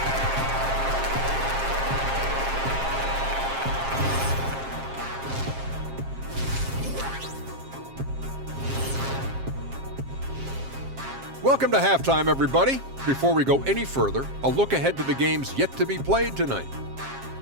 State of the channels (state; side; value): late; left; 7.5 ms